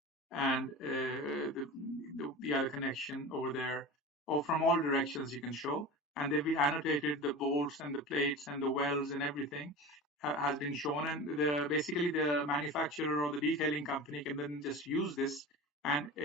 And the other connection over there, or from all directions you can show. And they've been annotated, the bolts and the plates and the welds and everything has been shown. And basically the manufacturer or the detailing company can then just use this. And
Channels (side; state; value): both; normal; correlation 0.31